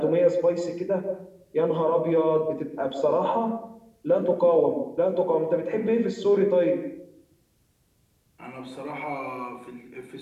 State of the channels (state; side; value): identical; both; correlation 1.00